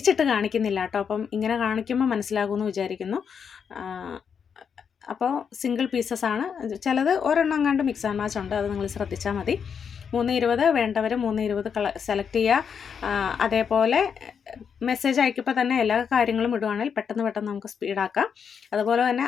കാണിക്കുന്നില്ല കേട്ടോ. അപ്പം ഇങ്ങനെ കാണിക്കുമ്പോൾ മനസ്സിലാകുമെന്ന് വിചാരിക്കുന്നു. അപ്പോൾ സിംഗിൾ പീസസ് ആണ്. ചിലത് ഒരെണ്ണം കണ്ട് മിക്സ് ആൻഡ് മാച്ച് ഉണ്ട്, അത് നിങ്ങൾ ശ്രദ്ധിച്ചാൽ മതി. 320 വേണ്ടവർ 320 സെലക്ട് ചെയ്യുക. അതേപോലെ മെസ്സേജ് അയക്കുമ്പോൾ തന്നെ എല്ലാ കാര്യങ്ങളും ഇടുവാണെങ്കിൽ പെട്ടെന്ന് നമുക്ക് സ്പീഡാക്കാം. അതുപോലെ തന്നെ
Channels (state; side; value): quieter; right; 6.9 dB